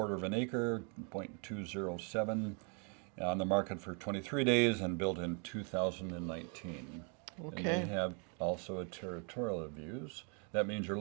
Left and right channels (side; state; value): left; quieter; 37.9 dB